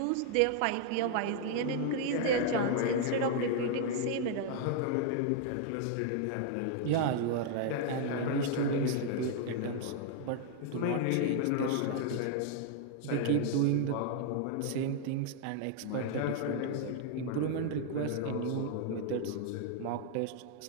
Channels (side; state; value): both; different; correlation 0.00